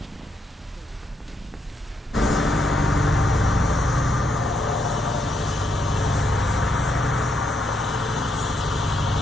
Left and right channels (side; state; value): both; normal; correlation 0.78